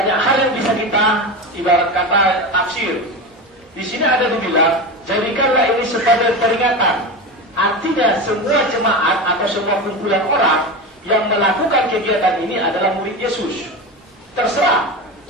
hal yang bisa kita ibarat kata tafsir. Di sini ada dibilang, jadikanlah ini sebagai peringatan. Artinya semua jemaat atau semua kumpulan orang yang melakukan kegiatan ini adalah murid Yesus. Terserah.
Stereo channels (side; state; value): both; normal; correlation 0.23